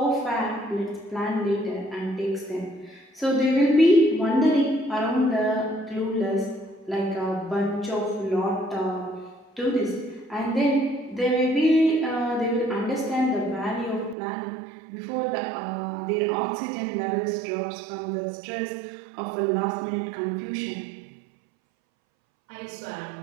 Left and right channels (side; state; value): left; drops out; at 14.2 s